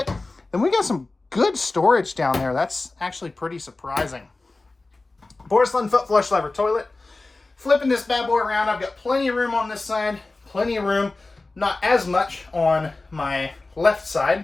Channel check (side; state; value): right; quieter; 3.3 dB